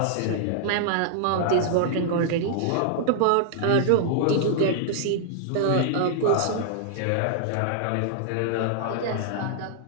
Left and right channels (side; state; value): both; different; correlation -0.01